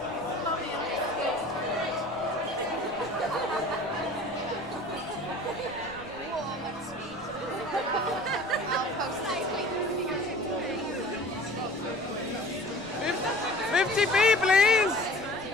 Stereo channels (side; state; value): left; noise; rumble, 25 dB below the sound